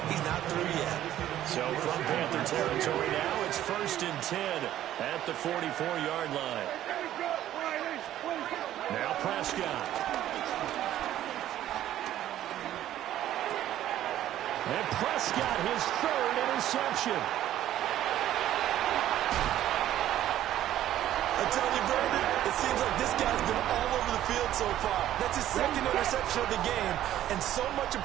he's not through yet. So from Panther territory now, it's 1st and 10 at the 44-yard line. Now Prescott. And Prescott, his 3rd interception. I tell you, Brandon, it seems like this guy's been all over the field so far. That's his 2nd interception of the game. And so much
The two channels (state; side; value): quieter; left; 12.6 dB